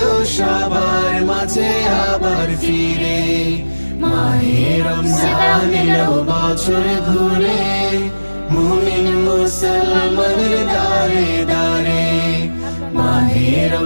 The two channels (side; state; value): both; inverted; correlation -1.00